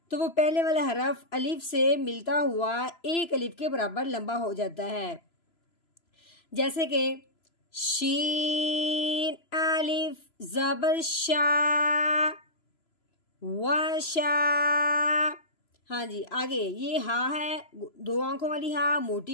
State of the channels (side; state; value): right; late; 3.0 ms